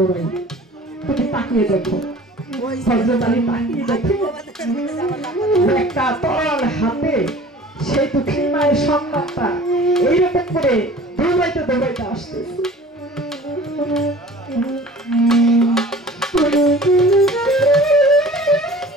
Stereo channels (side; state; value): both; normal; correlation 0.45